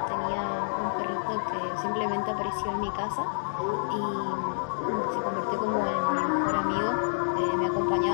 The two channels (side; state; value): right; silent; digital silence